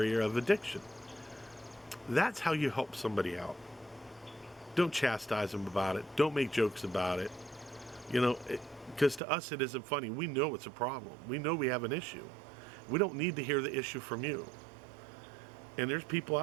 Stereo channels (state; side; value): drops out; left; at 9.2 s